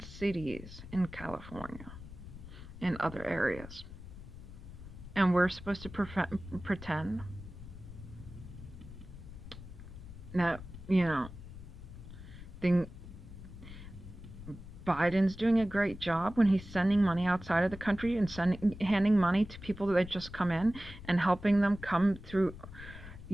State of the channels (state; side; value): noise; left; rumble, 14 dB below the sound